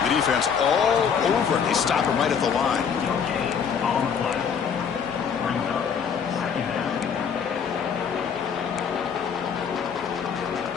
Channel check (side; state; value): right; quieter; 6.9 dB